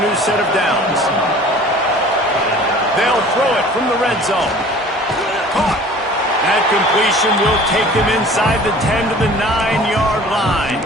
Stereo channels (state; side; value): normal; both; correlation 0.46